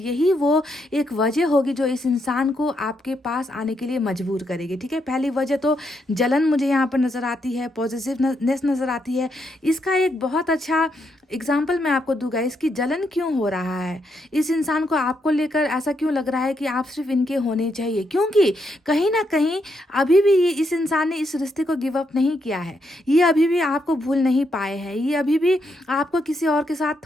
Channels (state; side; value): normal; both; correlation 0.79